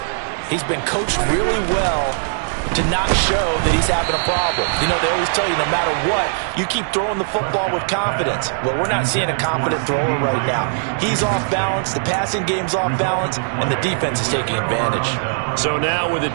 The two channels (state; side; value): silent; left; digital silence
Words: he's been coached really well to not show that he's having a problem. You know, they always tell you no matter what, you keep throwing the football with confidence. Well, we're not seeing a confident thrower right now. He's off balance, the passing game's off balance, and the defense is taking advantage. So now with a